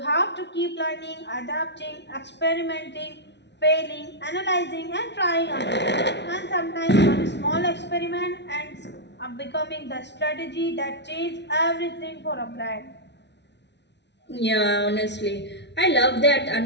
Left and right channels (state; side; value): late; right; 0.50 ms